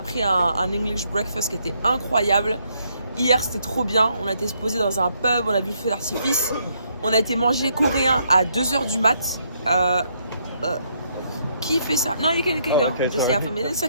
pris un English breakfast qui était incroyable. Hier c'était trop bien, on a été se poser dans un pub, on a vu le feu d'artifice, on a été manger coréen à 2h du mat. Qui fait ça? Non, you can go. Okay, Just half a minute, it's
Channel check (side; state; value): both; inverted; correlation -0.73